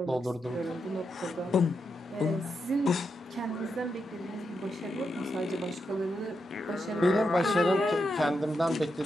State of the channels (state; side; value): normal; both; correlation 0.84